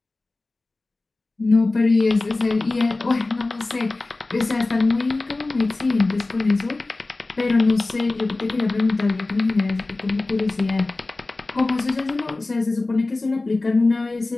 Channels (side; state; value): right; quieter; 3.2 dB